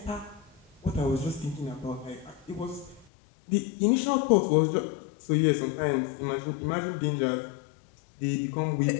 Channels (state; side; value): drops out; right; at 3.1 s